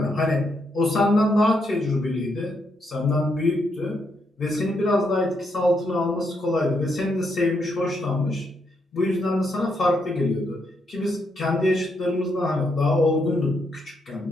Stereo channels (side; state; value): both; normal; correlation 0.78